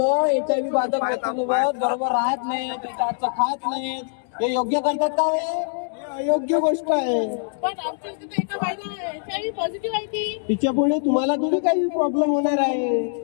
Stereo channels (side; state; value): right; silent; digital silence